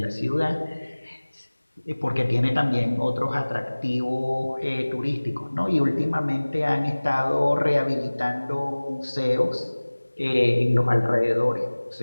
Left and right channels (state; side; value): inverted; both; correlation -1.00